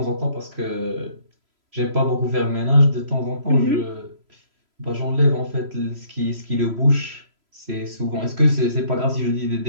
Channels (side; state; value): left; late; 3.0 ms